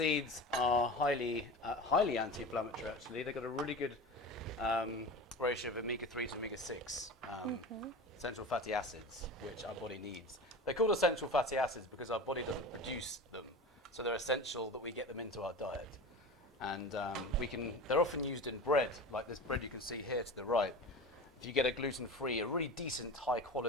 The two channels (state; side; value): normal; both; correlation 0.31